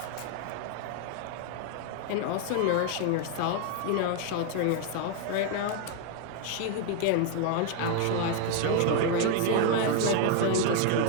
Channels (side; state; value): both; different; correlation 0.00